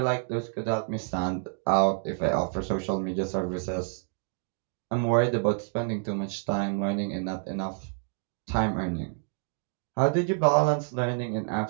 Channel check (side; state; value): left; silent; 56 dB below the other